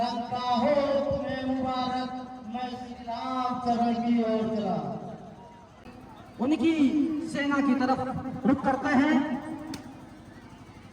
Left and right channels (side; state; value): both; identical; correlation 1.00